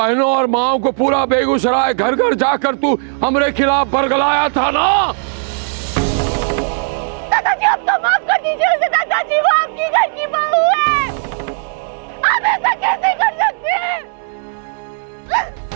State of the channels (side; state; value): left; silent; digital silence